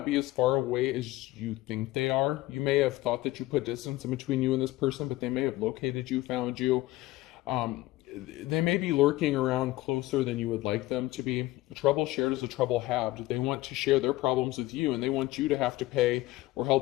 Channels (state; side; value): quieter; right; 17.8 dB